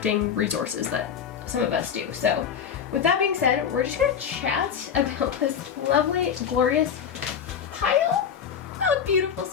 resources that some of us do. So with that being said, we're just gonna chat about this lovely, glorious pile of beautiful,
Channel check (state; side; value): quieter; right; 7.7 dB